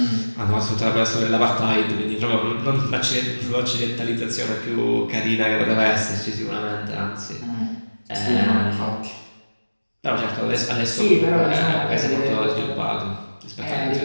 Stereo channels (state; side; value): inverted; both; correlation -1.00